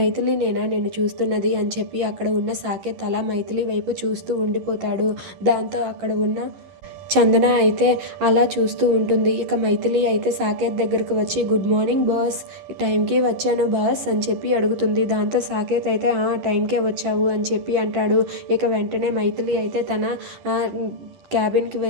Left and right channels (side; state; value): left; late; 11 ms